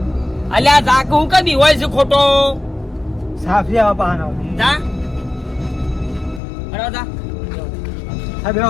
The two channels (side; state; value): right; drops out; at 6.4 s